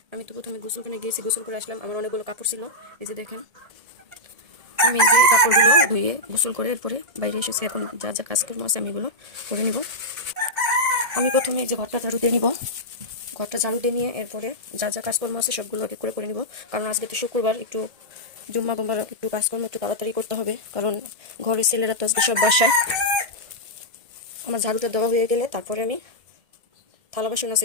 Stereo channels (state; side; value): late; left; 1.8 ms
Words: আমি তো প্রথমে গোসলখানে গিয়েছি, গোসল করে আসলাম। আমার অনেকগুলো কাপড় ছিল, এই যে দেখেন। আমি এই যে কাপড়গুলো ধুয়ে গোসল করে এরপরে বাইরে এসেছি। এখন যা যা কাজকর্ম আছে আমি এগুলো করে নিব। আমি প্রথমে এই যে ঘরটা ঝাড়ু দিয়ে নিব। ঘরটা ঝাড়ু দিয়ে নিয়ে এরপরে যা যা কাজকর্ম আছে সবগুলো এক এক করে নিব। কারণ আজকে তো শুক্রবার, একটু জুম্মা গুম্বার একটু কাজকর্ম একটু তাড়াতাড়ি করতে হবে, কারণ ঘরের ছেলেরা তো আজকে সব বাসায়। আমার ঝাড়ুটা দেওয়া হয়ে গেলে তারপরে আমি থালা বাসন